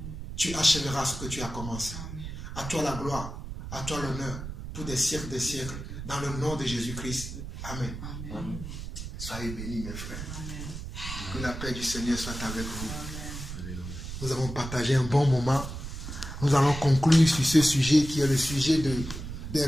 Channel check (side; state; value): right; noise; rumble, 8 dB below the sound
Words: tu achèveras ce que tu as commencé. À toi la gloire, à toi l'honneur, pour des siècles, dans le nom de Jésus-Christ. Amen. Amen. Soyez bénis, mes frères. Amen. Que la paix du Seigneur soit avec vous. Amen. Nous avons partagé un bon moment. Nous allons conclure sur ce sujet qui est le sujet des